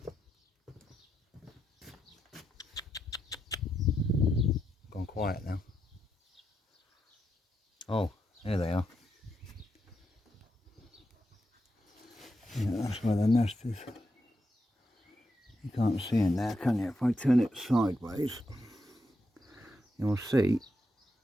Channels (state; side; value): normal; both; correlation 0.83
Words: Gone quiet now. Oh, here they are. Yeah, that's where the nest is. You can't see in there, can you? If I turn it sideways, you'll see